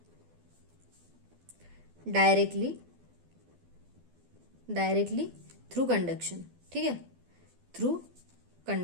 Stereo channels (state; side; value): late; left; 12 ms